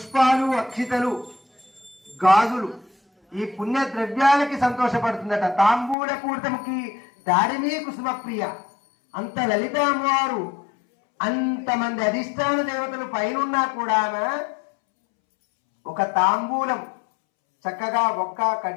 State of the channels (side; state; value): right; drops out; at 6.0 s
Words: అక్షితలు గాజులు ఈ పుణ్య ద్రవ్యాలకి సంతోషపడుతుందట. తాంబూల పూర్తముకి దారిమీ కుసుమ ప్రియ. అంత లలిత అమ్మవారు అంతమంది అధిష్టాన దేవతలు పైనున్నా కూడా ఒక తాంబూలం చక్కగా ఒక్క